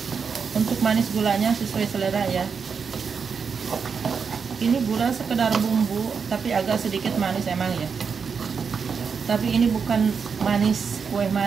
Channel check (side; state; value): left; quieter; 5.9 dB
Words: Untuk manis gulanya sesuai selera ya. Ini gula sekedar bumbu, tapi agak sedikit manis emang ya. Tapi ini bukan manis, kue